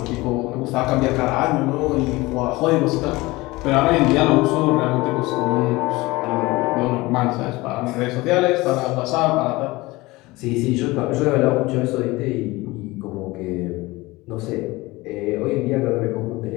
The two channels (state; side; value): quieter; right; 21.1 dB